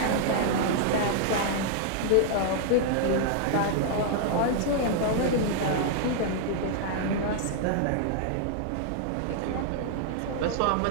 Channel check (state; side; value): different; both; correlation -0.01